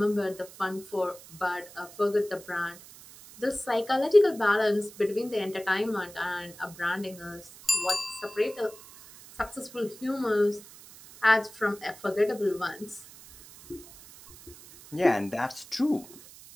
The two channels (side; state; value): right; noise; hiss, 19 dB below the sound